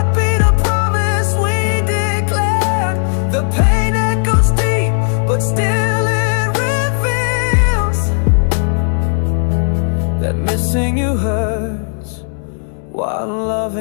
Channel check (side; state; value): right; silent; digital silence